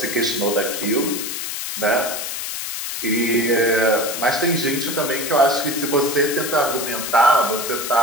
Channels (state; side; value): noise; left; hiss, 5 dB below the sound